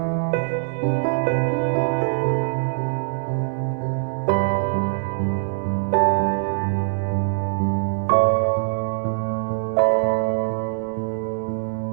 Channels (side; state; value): left; silent; digital silence